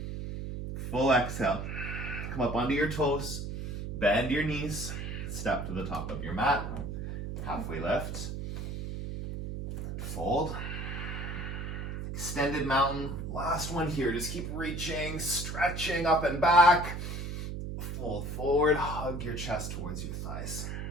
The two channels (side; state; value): right; noise; hum, 5 dB below the sound